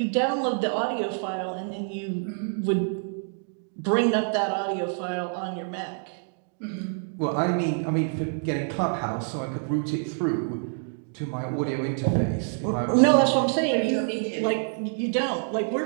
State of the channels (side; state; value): left; silent; 60 dB below the other